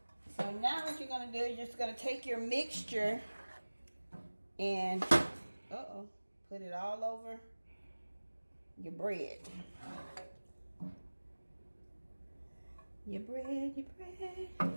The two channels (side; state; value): both; inverted; correlation -1.00